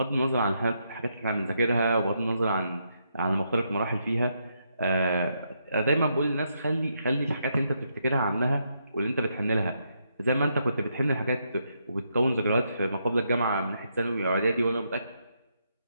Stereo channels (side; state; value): both; inverted; correlation -0.79